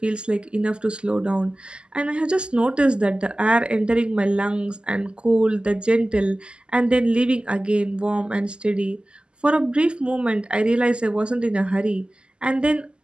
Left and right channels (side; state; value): left; late; 0.050 ms